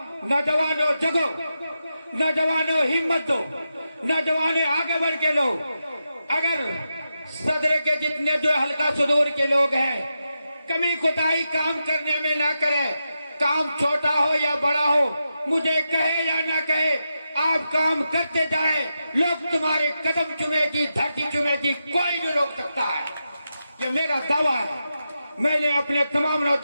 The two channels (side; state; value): both; inverted; correlation -0.88